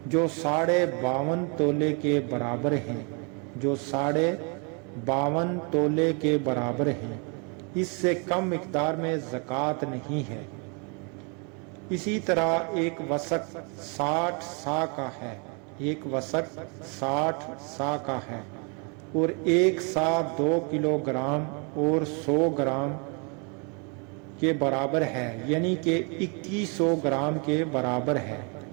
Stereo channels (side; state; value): left; quieter; 35.7 dB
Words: جو 52.5 تولے کے برابر ہیں، جو 52.5 تولے کے برابر ہیں، اس سے کم مقدار میں زکوٰۃ نہیں ہے۔ اسی طرح 1 وسق 60 سا کا ہے، 1 وسق 60 سا کا ہے اور 1 سا 2 کلو گرام اور 100 گرام کے برابر ہے، یعنی کہ 2100 گرام کے برابر ہے۔